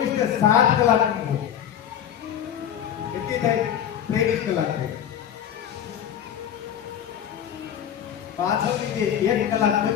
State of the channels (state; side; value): quieter; right; 9.6 dB